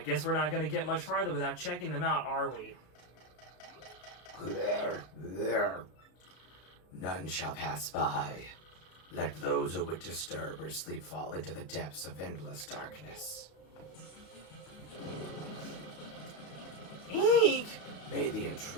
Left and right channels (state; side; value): late; right; 33 ms